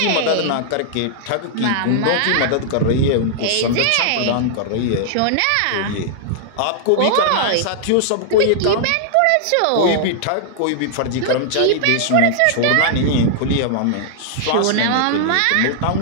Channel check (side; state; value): both; different; correlation -0.01